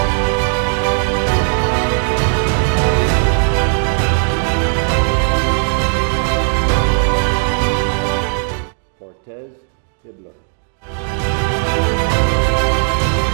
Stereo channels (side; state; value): left; silent; 56 dB below the other